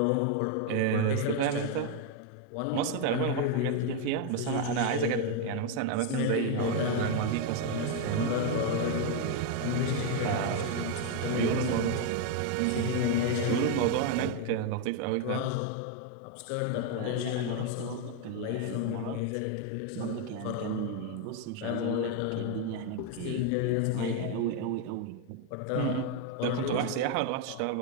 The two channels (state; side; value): different; both; correlation 0.01